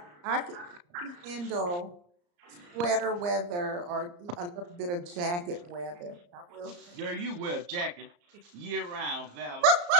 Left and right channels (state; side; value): late; left; 34 ms